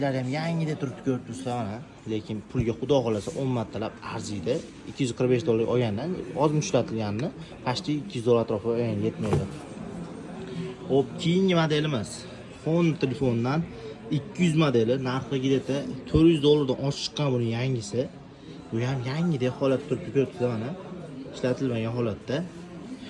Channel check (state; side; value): identical; both; correlation 1.00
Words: ham yangidek turibdi, ko'rib turibsizlar mana. Lekin pulga xudo xolasa 10 martalab arziydi. $245 olgandan ozmi ishlatilganini pashti $200 atrofida yetmaydi. Hop, keyingi modelimiz Honor telefondan 200 modeli narxigida $400 dan oshib chiqqan buning yangisi. Bu ham yangidek holatda turibdi, ko'rib turibsizlar mana. Ishlatilmagan holatda.